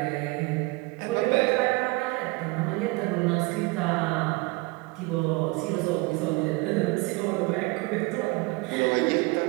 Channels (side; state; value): left; quieter; 25.2 dB